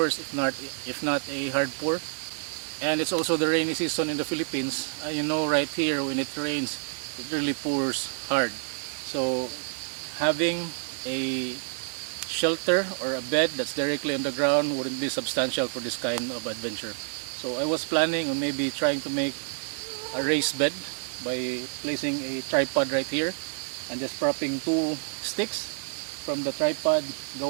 if not a hard pour. And it's also the rainy season in the Philippines. You know, right here when it rains, it really pours hard. So having a shelter or a bed that's directly on the ground wouldn't be substantial for this kind of adventure. So I was planning on maybe trying to make a raised bed by placing a tripod right here and just propping two sticks from the tripod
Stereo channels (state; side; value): silent; left; 59 dB below the other